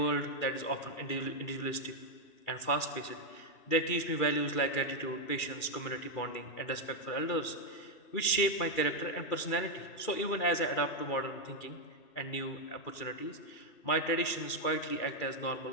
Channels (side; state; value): right; late; 2.4 ms